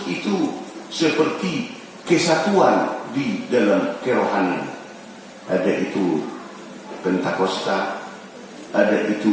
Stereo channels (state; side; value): identical; both; correlation 1.00